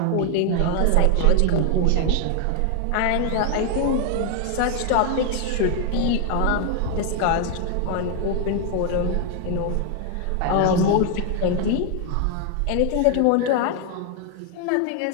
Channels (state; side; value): different; both; correlation 0.00